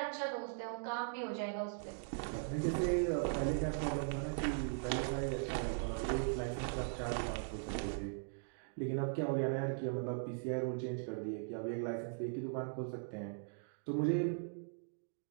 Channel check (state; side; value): silent; left; digital silence